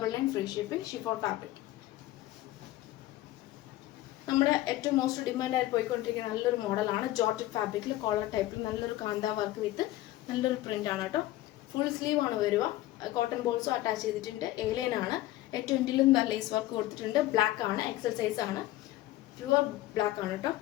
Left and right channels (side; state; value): right; quieter; 16.0 dB